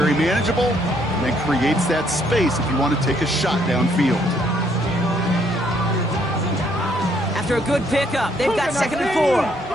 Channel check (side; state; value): both; normal; correlation 0.69